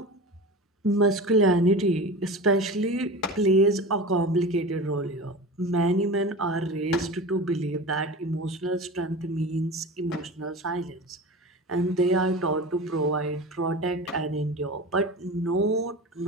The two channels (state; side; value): normal; both; correlation 0.31